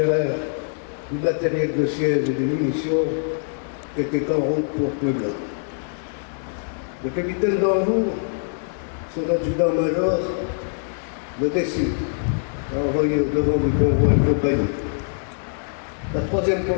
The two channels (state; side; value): silent; right; digital silence